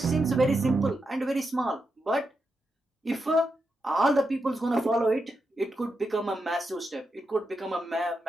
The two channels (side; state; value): both; normal; correlation 0.86